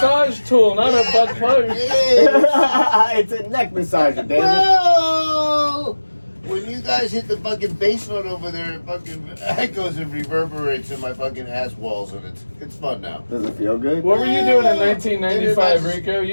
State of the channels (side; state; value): both; inverted; correlation -1.00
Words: tool, not a butt plug. Yeah. It's a neck massager, damn it. Well, when you guys hit the fucking bass note over there, it fucking echoes and reverberates in my fucking ass walls, and it's fun now. Does it feel good? What were you doing in 1995, Rico?